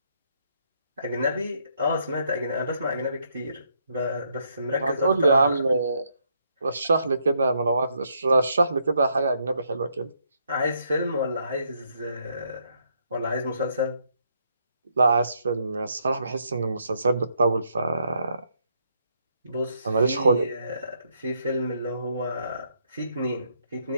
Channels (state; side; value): inverted; both; correlation -0.74